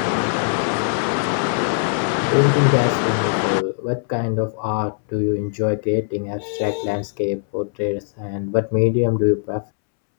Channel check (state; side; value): silent; right; 65 dB below the other